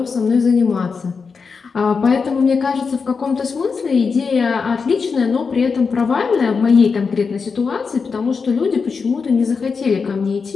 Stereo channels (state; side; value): quieter; right; 5.2 dB